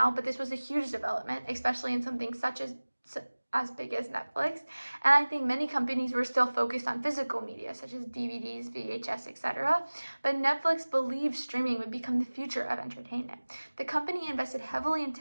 but this was a huge development, especially in something such as big as Netflix. And I think many companies were still focused on physical media such as DVDs, VHS, etc. But Netflix believed streaming would become the future of entertainment. The company invested heavily in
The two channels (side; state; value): both; inverted; correlation -1.00